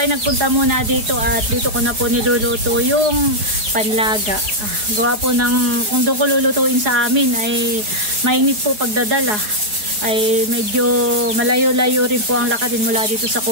nagpunta muna dito at dito ko na po niluluto yung panlaga. Gawa po ng, kung doon ko lulutuin sa amin ay mainit po pagdadala. Ay medyo malayo-layo rin po ang lakadin mula dito sa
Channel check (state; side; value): late; left; 4.6 ms